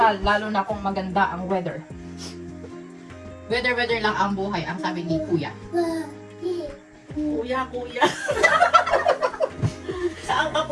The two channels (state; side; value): identical; both; correlation 1.00